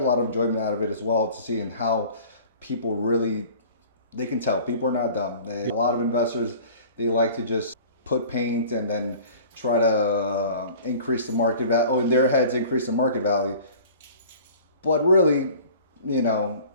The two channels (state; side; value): inverted; both; correlation -0.45